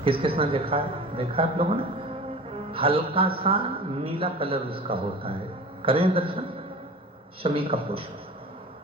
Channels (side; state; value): both; normal; correlation 0.38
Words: किस किसने देखा है? देखा है आप लोगों ने? हल्का सा नीला कलर उसका होता है। करें दर्शन शमी का पुष्प।